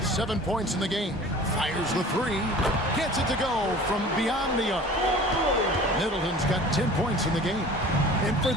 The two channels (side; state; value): both; normal; correlation 0.44